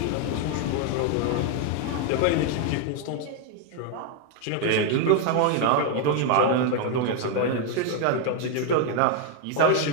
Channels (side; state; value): both; different; correlation 0.01